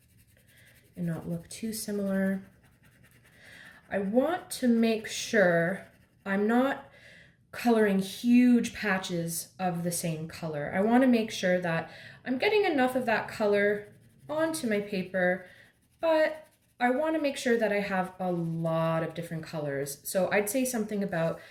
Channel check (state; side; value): identical; both; correlation 1.00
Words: and not look too similar. I want to make sure I'm not coloring huge patches of the same color. I want to make sure that I'm getting enough of that color onto my paper, but I want to make sure that I have a lot of different colors. So I'd say something about